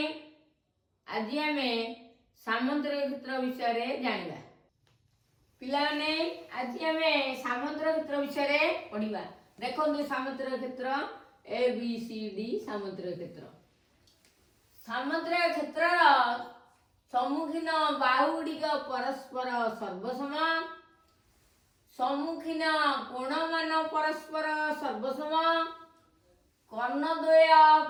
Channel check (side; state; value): both; identical; correlation 1.00